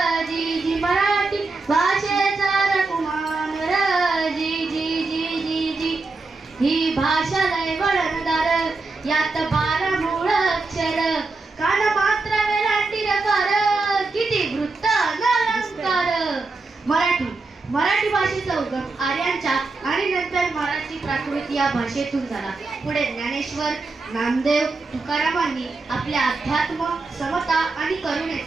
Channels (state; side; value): quieter; left; 3.7 dB